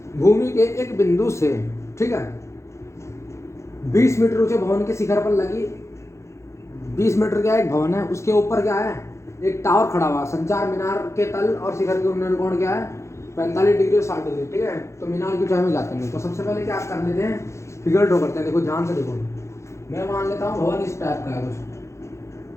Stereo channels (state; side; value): late; right; 0.14 ms